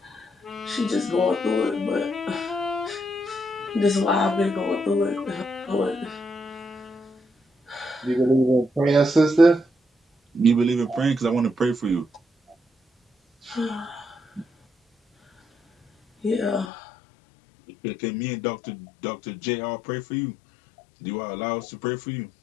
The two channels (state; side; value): drops out; right; at 16.7 s